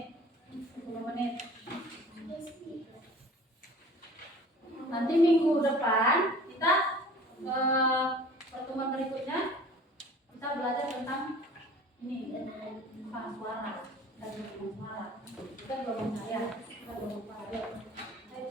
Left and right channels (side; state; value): both; normal; correlation 0.45